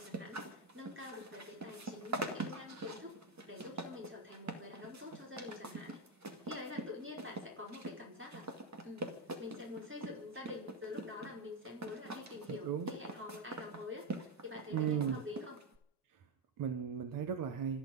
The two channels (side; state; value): left; quieter; 3.1 dB